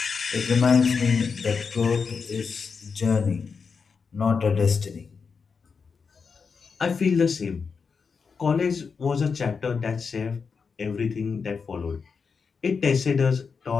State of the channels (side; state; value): right; quieter; 5.4 dB